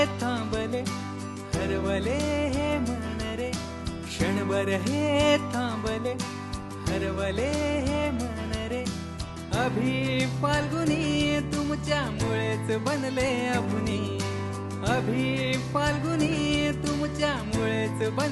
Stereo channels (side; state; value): both; identical; correlation 1.00